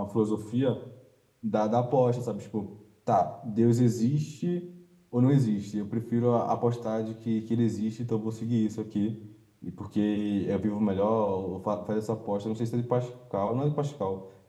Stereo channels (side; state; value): both; identical; correlation 1.00